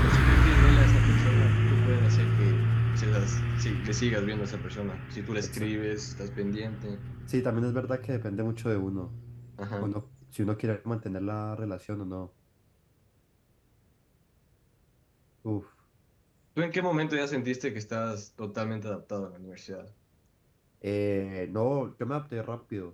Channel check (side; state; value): both; identical; correlation 1.00